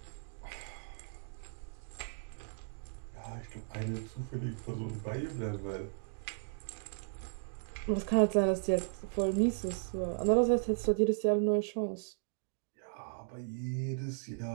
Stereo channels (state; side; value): silent; left; digital silence